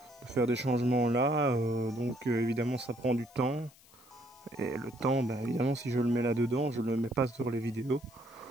faire des changements là, donc évidemment ça prend du temps. Et le temps, bah, évidemment si je le mets là dedans, je le mets pas sur les vidéos.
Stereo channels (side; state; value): left; noise; hiss, 26 dB below the sound